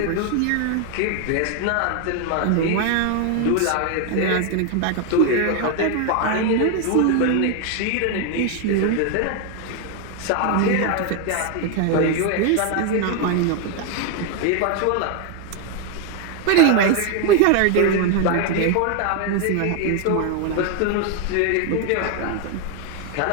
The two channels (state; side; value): different; both; correlation 0.01